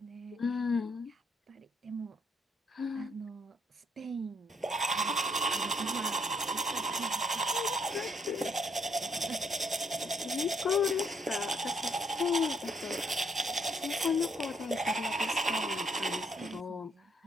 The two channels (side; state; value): both; normal; correlation 0.71